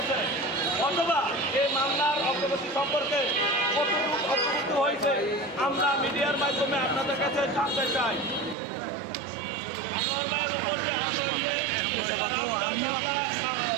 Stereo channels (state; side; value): drops out; left; at 8.6 s